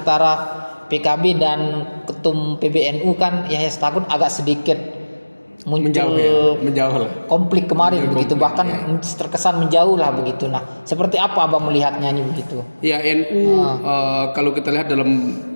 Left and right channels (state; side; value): inverted; both; correlation -1.00